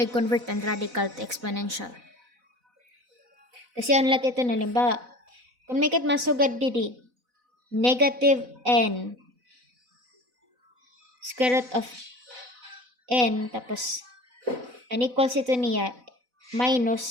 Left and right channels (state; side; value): late; left; 4.0 ms